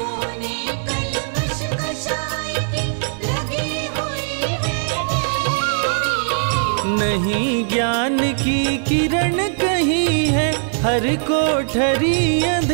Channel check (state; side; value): silent; left; digital silence